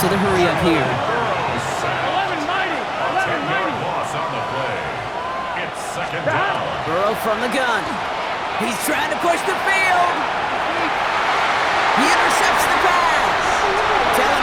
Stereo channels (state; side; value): identical; both; correlation 1.00